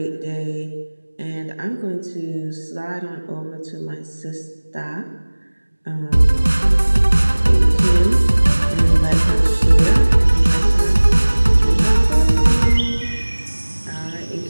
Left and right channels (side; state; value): both; inverted; correlation -1.00